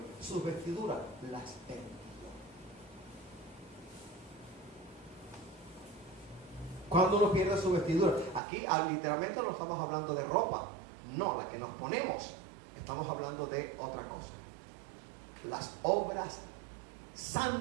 Sus vestiduras las perdió. ¿Cuándo uno pierde su vestidura? Aquí literalmente no estamos hablando de ropa, no, la que nos ponemos. Estamos hablando de otra cosa. las obras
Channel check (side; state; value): left; drops out; at 8.4 s